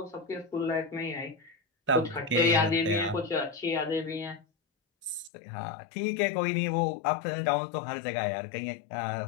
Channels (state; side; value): drops out; right; at 5.3 s